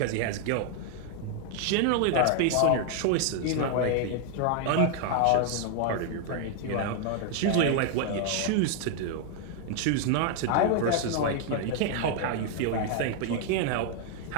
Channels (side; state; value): both; different; correlation 0.00